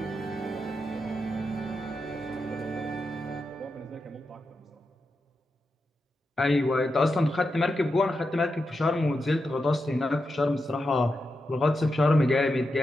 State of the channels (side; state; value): both; normal; correlation 0.88